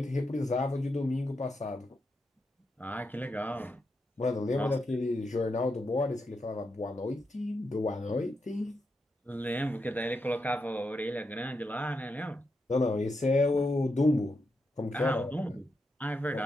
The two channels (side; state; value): both; normal; correlation 0.84